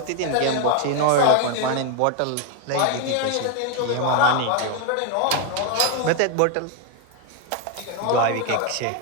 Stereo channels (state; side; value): different; both; correlation 0.01